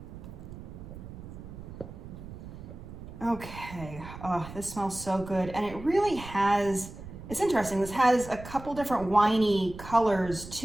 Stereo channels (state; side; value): noise; right; rumble, 13 dB below the sound